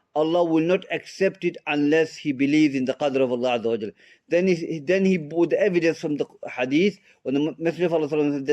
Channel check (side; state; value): both; identical; correlation 1.00